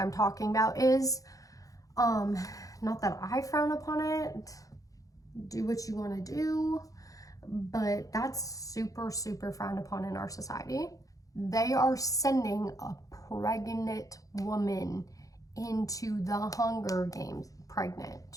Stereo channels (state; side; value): late; right; 0.17 ms